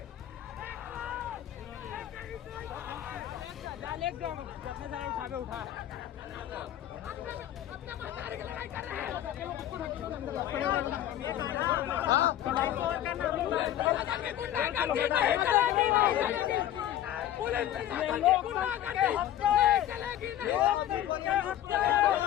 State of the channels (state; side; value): quieter; right; 12.1 dB